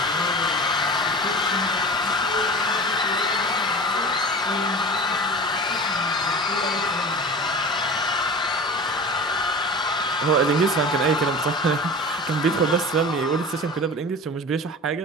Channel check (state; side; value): normal; both; correlation 0.35